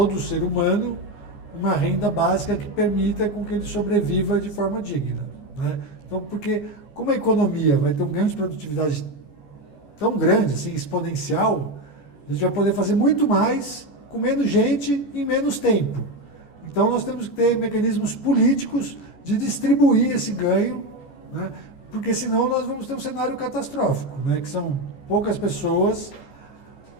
ser humano uma renda básica que permita com que ele sobreviva de forma digna, né? Então, porque como a economia vai ter um ganho de produtividade tão grande, assim, exponencial, a gente vai poder fazer muito mais com menos gente em menos tempo. Então, nós temos que ter mecanismos políticos de distribuir esse ganho, né? Porque senão nós vamos ter um cenário catastrófico, né? Que são poucas pessoas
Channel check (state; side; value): late; right; 14 ms